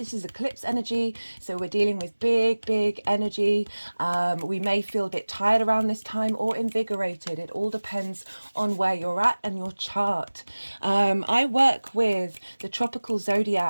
is eclipse energy, so we're dealing with big energy. We may feel a bit tired around this time or invigorated. It all depends on where you're at and your chart. I work with the tropical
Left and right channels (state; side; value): inverted; both; correlation -1.00